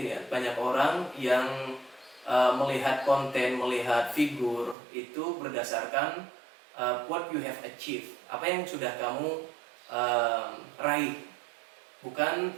ya, banyak orang yang melihat konten, melihat figur itu berdasarkan what you have achieved, apa yang sudah kamu raih,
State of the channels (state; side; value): drops out; left; at 4.8 s